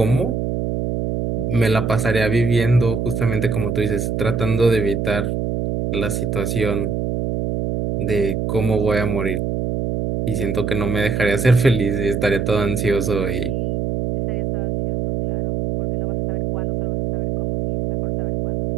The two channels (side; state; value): right; noise; hum, 1 dB below the sound